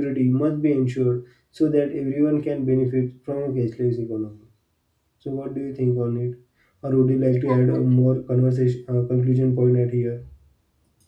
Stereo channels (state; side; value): identical; both; correlation 1.00